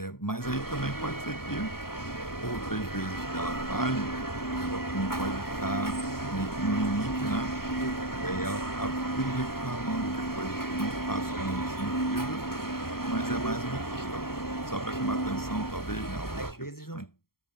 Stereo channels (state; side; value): late; right; 0.93 ms